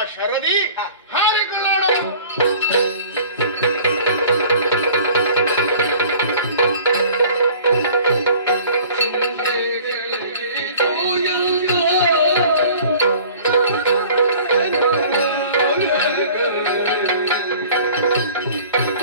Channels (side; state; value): both; inverted; correlation -0.47